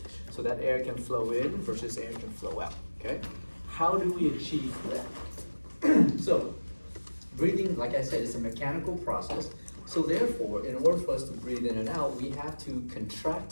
so that air can flow in versus air can flow out, okay? How do we achieve that? So, breathing, like I said, is a mechanical process. So therefore, in order for us to breathe in and out, we have to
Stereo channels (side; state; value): both; inverted; correlation -1.00